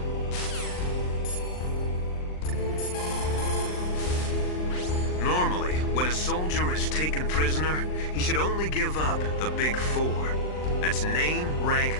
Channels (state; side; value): late; right; 39 ms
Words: Normally, when a soldier is taken prisoner, he should only give up the big four. That's name, rank,